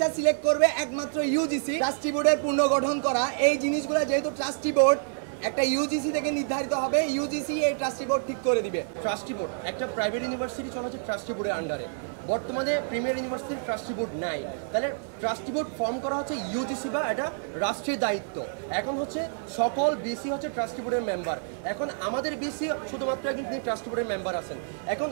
সিলেক্ট করবে একমাত্র ইউজিসি। ট্রাস্টি বোর্ডের পুনর্গঠন করা এই জিনিসগুলো যেহেতু ট্রাস্টি বোর্ড একটা ইউজিসি থেকে নির্ধারিত হবে, ইউজিসি এই ট্রাস্টি বোর্ড ঠিক করে দিবে। ট্রাস্টি বোর্ড একটা প্রাইভেট ইউনিভার্সিটি চলছে ট্রাস্টি বোর্ডের আন্ডারে, বর্তমানে প্রিমিয়ার ইউনিভার্সিটি ট্রাস্টি বোর্ড নাই, তাহলে ট্রাস্টি বোর্ড ফর্ম করা হচ্ছে ইউজিসি বা এটা রাষ্ট্রীয় দায়িত্ব। এখন হচ্ছে সকল বিসি হচ্ছে ট্রাস্টি বোর্ডের মেম্বার, এখন আমাদের বিসি শুধুমাত্র একটি ট্রাস্টি বোর্ডের মেম্বার আছে। এখন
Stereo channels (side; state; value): left; silent; 59 dB below the other